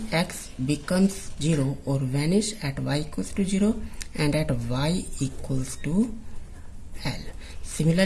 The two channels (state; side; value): identical; both; correlation 1.00